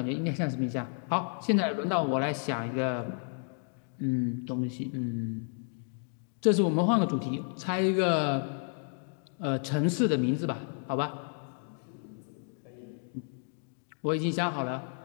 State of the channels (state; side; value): silent; right; 57 dB below the other